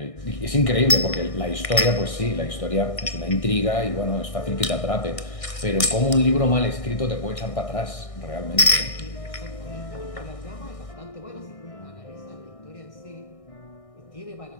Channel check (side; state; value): right; late; 1.6 ms